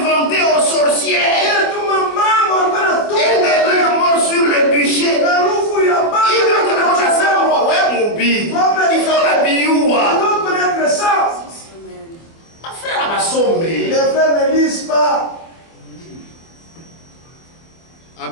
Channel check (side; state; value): right; late; 24 ms